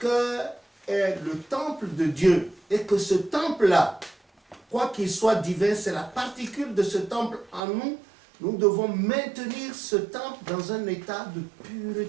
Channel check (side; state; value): left; drops out; at 7.6 s